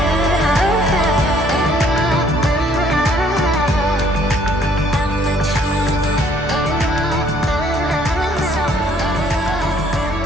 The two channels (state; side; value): normal; both; correlation 0.63